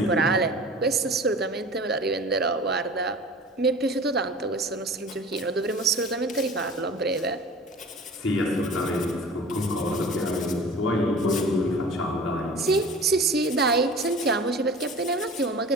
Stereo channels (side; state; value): both; normal; correlation 0.40